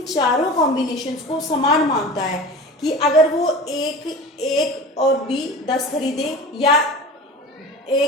चारों कॉम्बिनेशंस को समान मानता है कि अगर वो एक और बी 10 खरीदे, या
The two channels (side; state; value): both; normal; correlation 0.35